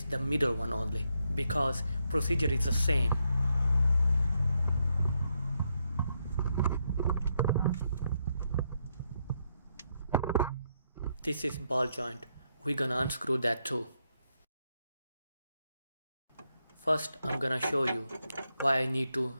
the middle one only because procedure is the same. This is ball joint. We're gonna unscrew that too. First, I'm gonna show you why I need to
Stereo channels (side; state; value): both; inverted; correlation -0.80